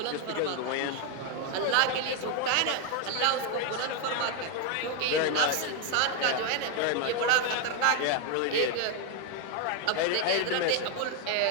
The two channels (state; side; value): different; both; correlation 0.01